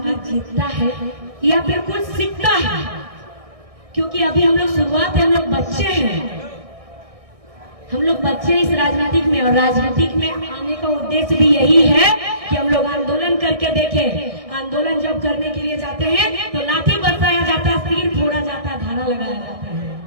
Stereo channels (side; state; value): left; late; 1.6 ms